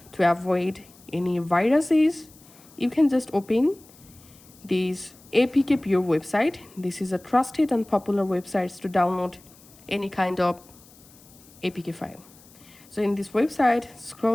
to avoid any viruses, you can just open this APK Pure website. This is a trusted and popular website to download any kind of APK file. So in this website,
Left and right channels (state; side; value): noise; left; hiss, 25 dB below the sound